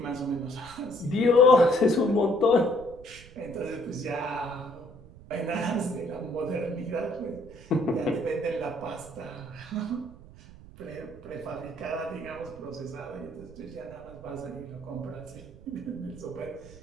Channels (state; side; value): noise; right; rumble, 19 dB below the sound